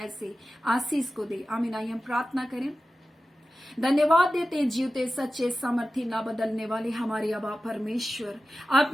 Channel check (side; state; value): both; normal; correlation 0.94